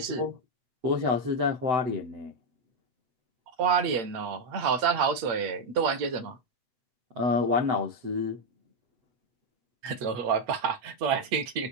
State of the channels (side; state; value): left; late; 8.1 ms